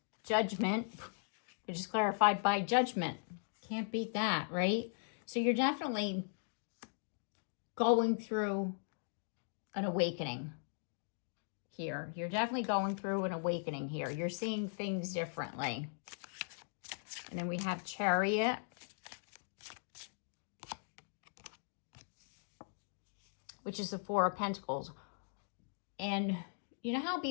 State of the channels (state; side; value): silent; right; digital silence